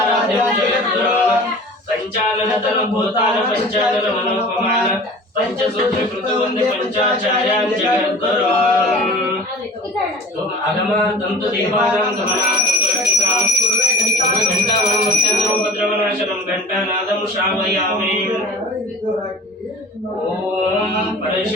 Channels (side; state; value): both; normal; correlation 0.40